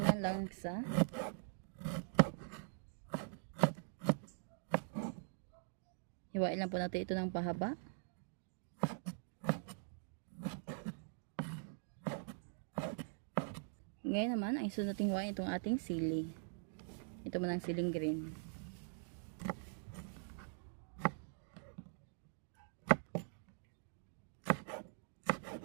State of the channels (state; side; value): silent; left; digital silence